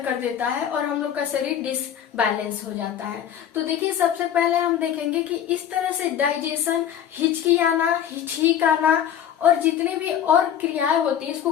कर देता है और हम लोग का शरीर डिसबैलेंस हो जाता है। तो देखिए सबसे पहले हम देखेंगे कि इस तरह से डाइजेशन, हिचकी आना, छींक आना और जितने भी और क्रियाएं होती है, इसको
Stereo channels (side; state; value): right; quieter; 9.6 dB